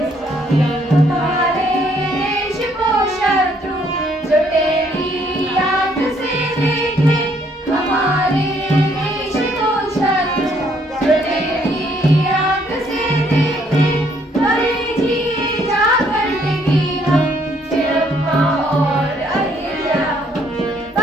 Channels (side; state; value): both; normal; correlation 0.67